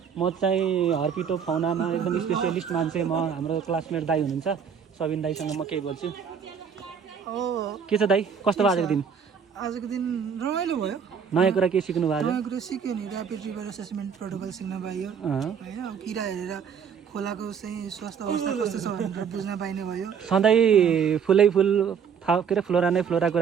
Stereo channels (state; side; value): quieter; left; 7.1 dB